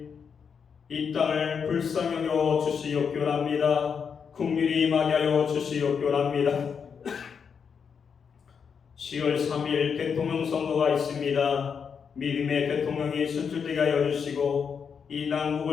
이 땅을 불쌍히 여겨 주시옵기원합니다. 긍휼히 임하게 하여 주시옵기원합니다. 10월 3일 대통령 선거가 있습니다. 믿음의 대통령이 선출되게 하여 주시고 이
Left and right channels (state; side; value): quieter; right; 6.5 dB